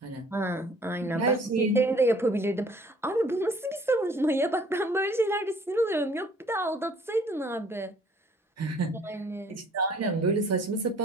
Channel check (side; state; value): both; normal; correlation 0.56